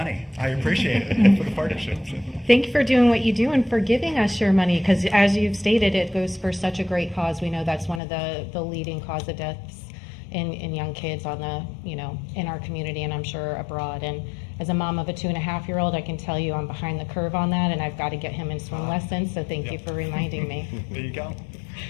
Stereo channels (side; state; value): right; drops out; at 8.0 s